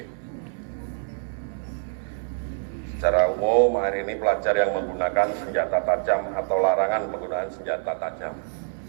Secara umum hari ini pelajar yang menggunakan senjata tajam atau larangan penggunaan senjata tajam.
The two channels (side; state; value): left; silent; 61 dB below the other